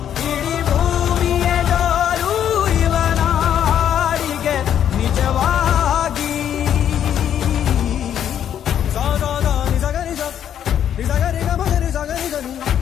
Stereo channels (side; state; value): right; quieter; 9.7 dB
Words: ಇಡೀ ಭೂಮಿಯ ಡೋಲು ಇವನ ಹಾಡಿಗೆ ನಿಜವಾಗಿ. ಸಾಧಾರ ನಿಜಗರಿ ನಿಜಗರಿ ಗಮಗರಿ ಸಗರಿ ಗನಿ